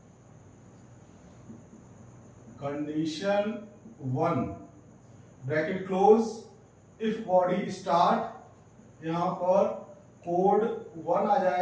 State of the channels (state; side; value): identical; both; correlation 1.00